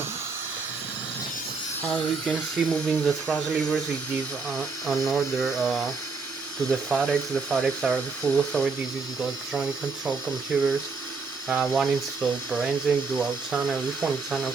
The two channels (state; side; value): quieter; left; 4.5 dB